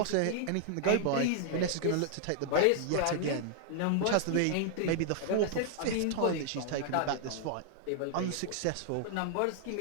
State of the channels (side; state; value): both; different; correlation 0.00